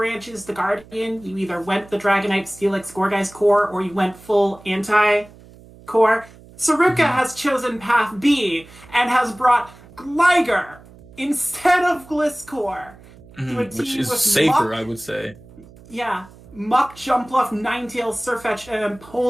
to Guardian? You either went the Dragonite, Steelix, Gourgeist core, or you went full anti-core. Saruka has chosen path B and has brought Gligar instead of Gliscor. Which is safer, I would say. Yeah. Muck, Jumpluff, Ninetales, Sirfetch'd, and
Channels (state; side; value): noise; right; hum, 22 dB below the sound